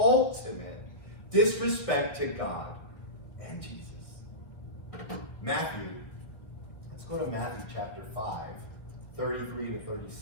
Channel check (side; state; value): right; late; 1.4 ms